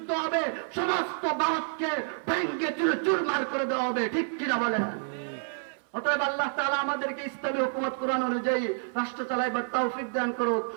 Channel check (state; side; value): silent; left; 57 dB below the other